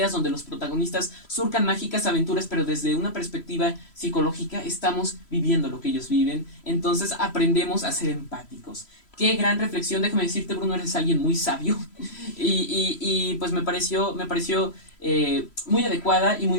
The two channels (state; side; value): late; right; 3.0 ms